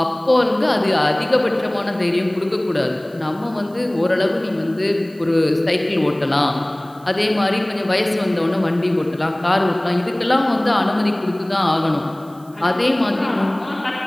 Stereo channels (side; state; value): right; noise; hiss, 28 dB below the sound